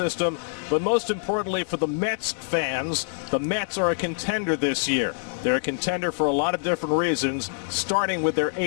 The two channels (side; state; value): right; silent; 62 dB below the other